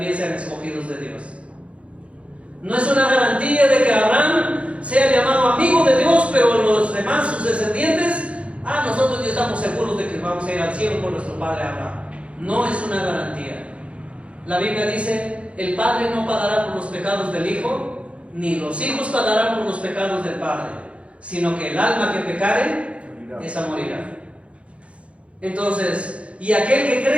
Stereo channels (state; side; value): late; left; 0.062 ms